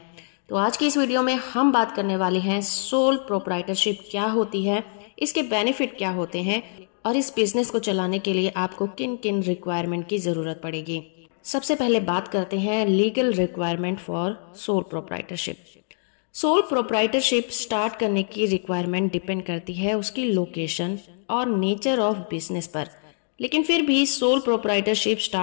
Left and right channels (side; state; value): right; silent; digital silence